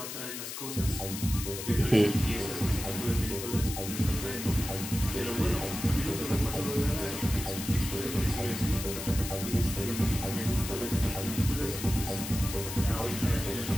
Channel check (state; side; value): noise; left; hiss, 7 dB below the sound